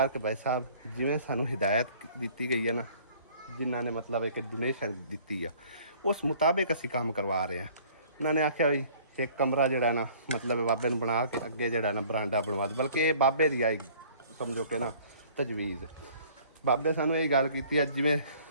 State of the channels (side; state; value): both; inverted; correlation -0.54